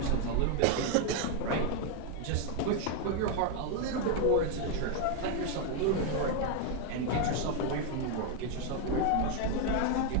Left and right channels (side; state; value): both; different; correlation 0.00